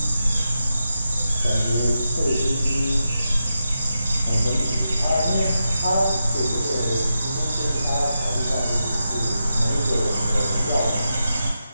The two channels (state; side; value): inverted; both; correlation -0.87